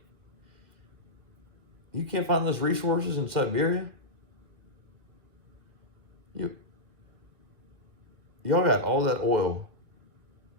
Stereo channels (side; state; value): left; late; 2.1 ms